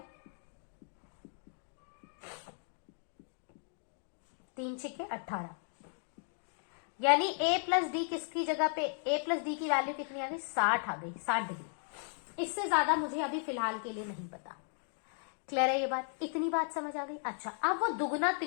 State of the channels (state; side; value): silent; right; 54 dB below the other